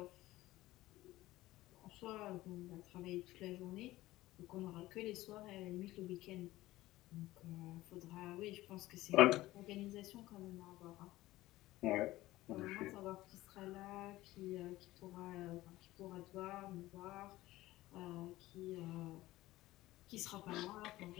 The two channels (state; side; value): quieter; right; 17.1 dB